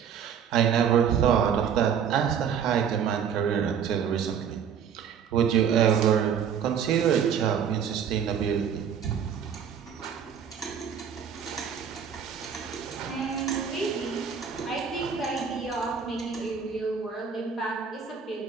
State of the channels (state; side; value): quieter; left; 7.6 dB